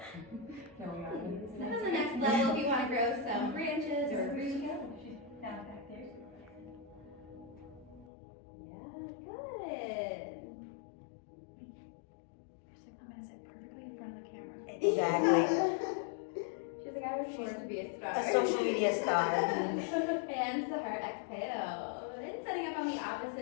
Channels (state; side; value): drops out; right; at 8.1 s